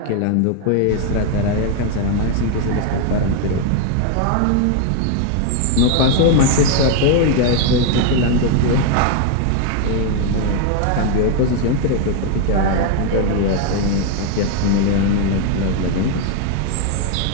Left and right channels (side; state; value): both; different; correlation 0.01